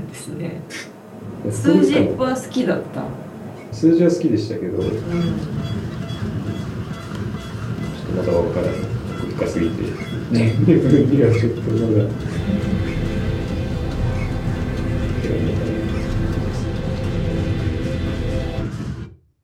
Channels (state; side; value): identical; both; correlation 1.00